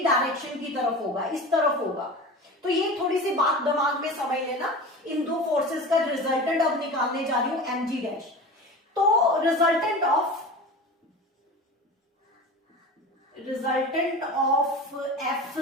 डायरेक्शन की तरफ होगा, इस तरफ होगा। तो ये थोड़ी सी बात दिमाग में समझ लेना, इन दो फोर्सेस का रिजल्टेंट अब निकालने जा रही हूं mg डैश। तो रिजल्टेंट ऑफ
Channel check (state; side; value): normal; both; correlation 0.32